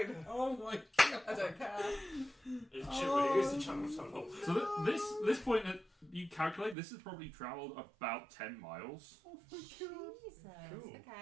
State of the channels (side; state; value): left; drops out; at 6.8 s